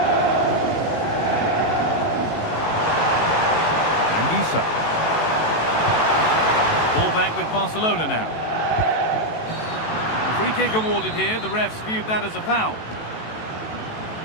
Ball back with Barcelona now. Free kick awarded here. The refs viewed that as a foul.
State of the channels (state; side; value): late; right; 18 ms